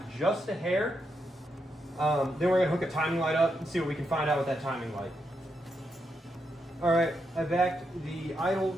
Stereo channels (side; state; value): both; normal; correlation 0.82